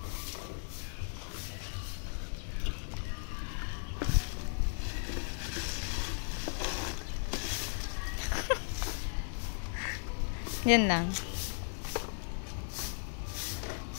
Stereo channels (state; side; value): silent; right; digital silence